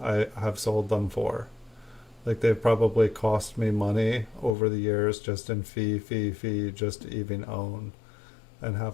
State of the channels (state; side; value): drops out; right; at 4.5 s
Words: I have sold them for. Like they've probably cost me money over the years just in fee, just to even own and